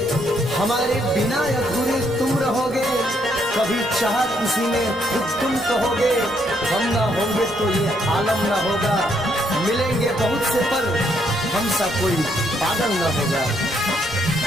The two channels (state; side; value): normal; both; correlation 0.73